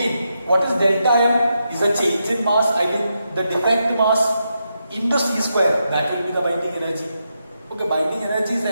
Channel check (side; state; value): both; inverted; correlation -0.84